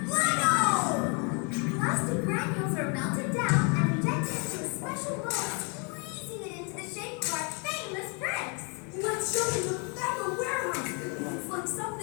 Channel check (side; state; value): right; quieter; 34.6 dB